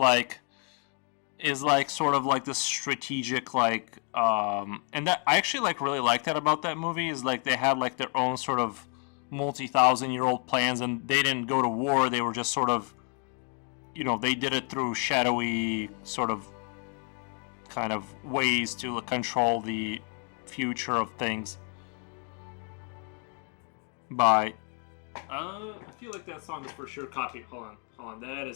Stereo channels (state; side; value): quieter; right; 38.6 dB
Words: sort of like the strategic like and that I actually like really like that about that movie, is like they had like their own sort of multi-thousand-year-old plans, and they didn't go to war. They were just sort of, they did it through shadowy sort of kind of ways to control the future of things by I feel like that song is for sure copy. Hold on, that